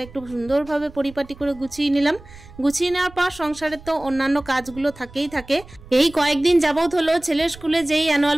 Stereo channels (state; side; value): noise; right; rumble, 20 dB below the sound